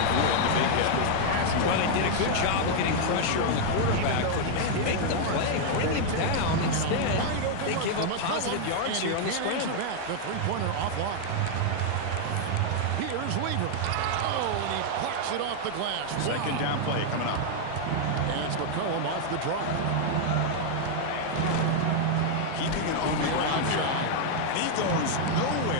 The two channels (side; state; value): both; different; correlation 0.00